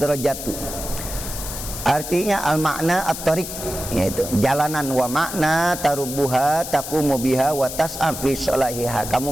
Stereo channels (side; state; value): left; noise; hiss, 8 dB below the sound